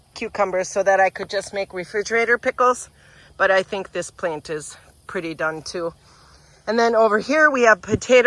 cucumbers so that I could just make refrigerator pickles, but I think this plant is pretty done too. And then over here we have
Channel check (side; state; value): both; identical; correlation 1.00